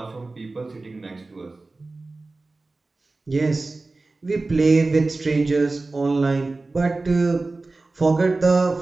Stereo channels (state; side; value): quieter; left; 3.4 dB